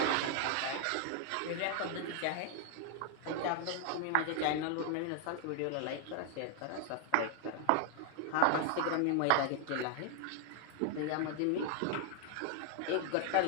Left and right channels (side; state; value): both; different; correlation 0.00